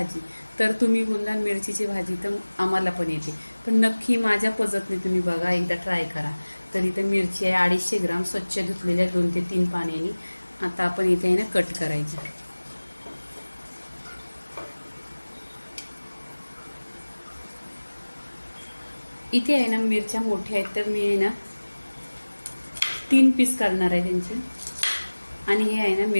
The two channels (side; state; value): both; inverted; correlation -1.00